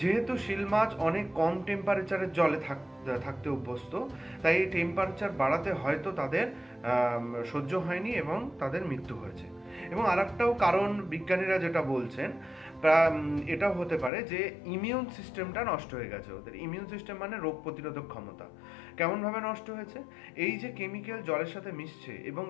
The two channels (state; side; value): drops out; right; at 14.1 s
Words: শিল মাছ অনেক কম টেম্পারেচারের জলে থাকতে অভ্যস্ত, তাই এই টেম্পারেচার বাড়াতে হয়তো তাদের সহ্য হয়নি এবং তাদের মৃত্যু হয়েছে। এবং আরেকটাও কারণ বিজ্ঞানীরা যেটা বলছেন, এটাও হতে পারে যে ইমিউন সিস্টেমটা নষ্ট হয়ে গেছে ওদের। ইমিউন সিস্টেম মানে রোগ প্রতিরোধক ক্ষমতা। কেমনভাবে নষ্ট হয়েছে? এই যে কেমিক্যাল জলের সাথে মিশছে এবং